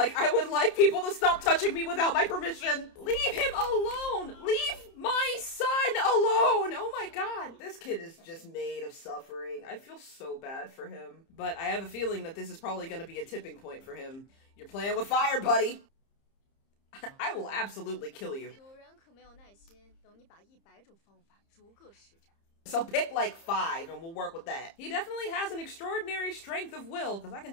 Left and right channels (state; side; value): late; right; 30 ms